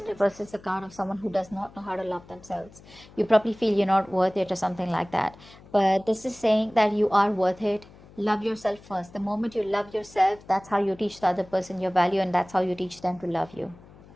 reverse is a card of someone who does not know how to love themselves. You probably feel you're not worth it or something like that. But this is saying that you are worth it. Love yourself first. The moment you love yourself, that's how you teach the other person your value, and that's how you teach them to love you.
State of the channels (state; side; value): noise; left; hum, 22 dB below the sound